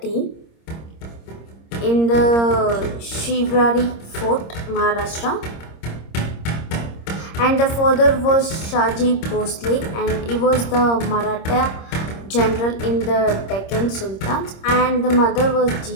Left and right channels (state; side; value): late; right; 26 ms